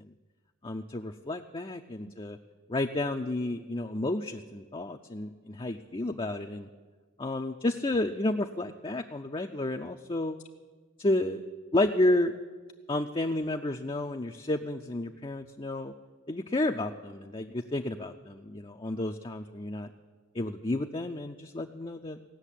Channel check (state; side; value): normal; both; correlation 0.64